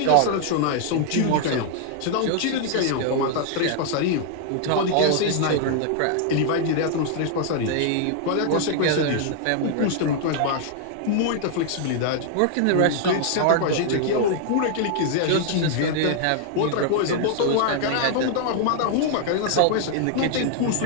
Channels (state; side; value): different; both; correlation 0.00